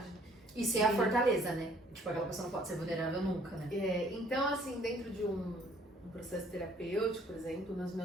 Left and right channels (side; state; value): both; normal; correlation 0.60